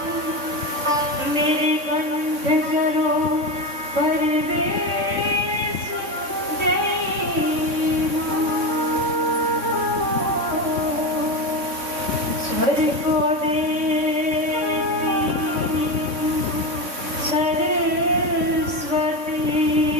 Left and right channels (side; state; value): left; late; 3.6 ms